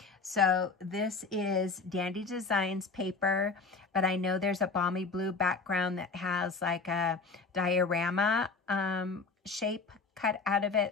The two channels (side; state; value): right; quieter; 4.3 dB